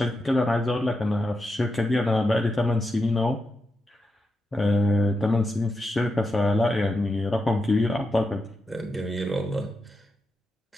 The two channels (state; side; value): normal; both; correlation 0.87